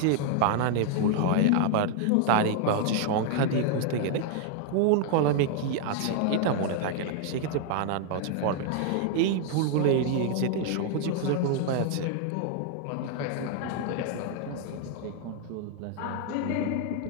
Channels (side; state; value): both; different; correlation 0.00